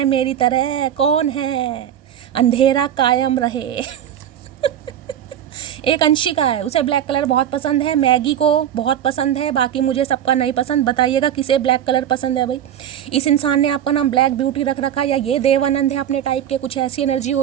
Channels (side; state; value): left; quieter; 10.2 dB